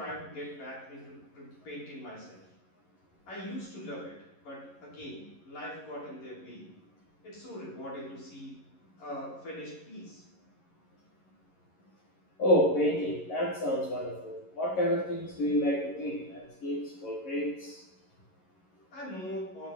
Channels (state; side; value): late; right; 11 ms